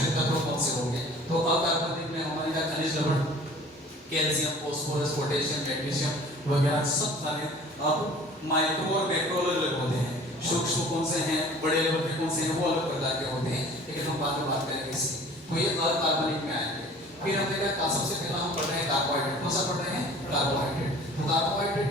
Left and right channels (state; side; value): normal; both; correlation 0.47